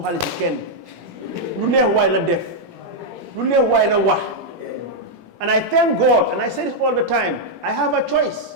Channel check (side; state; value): left; late; 18 ms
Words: ken. Lu neex way la def. Lu neex way la wax. And I thank God, and I say this all the time, I have a